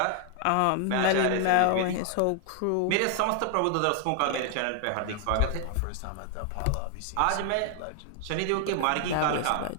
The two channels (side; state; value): both; different; correlation 0.00